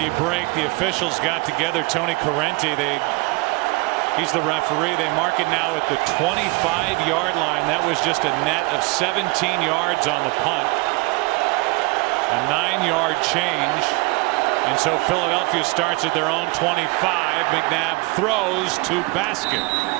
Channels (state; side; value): quieter; left; 25.7 dB